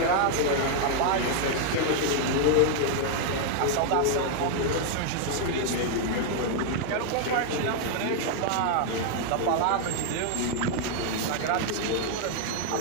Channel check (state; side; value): different; both; correlation 0.00